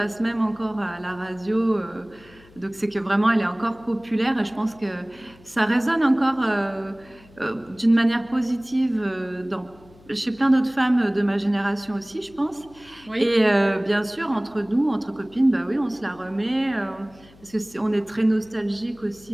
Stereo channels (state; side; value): noise; left; hum, 25 dB below the sound